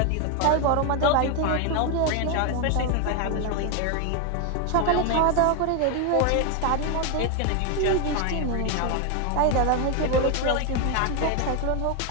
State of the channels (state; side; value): different; both; correlation 0.01